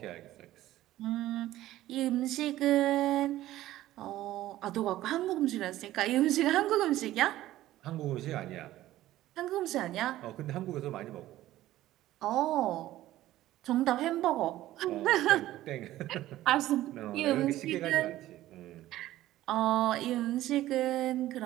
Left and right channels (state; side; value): quieter; left; 14.9 dB